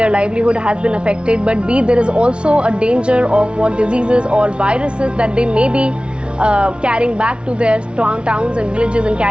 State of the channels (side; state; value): left; late; 0.057 ms